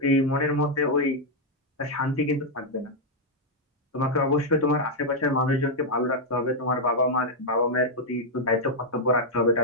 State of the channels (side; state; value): both; normal; correlation -0.02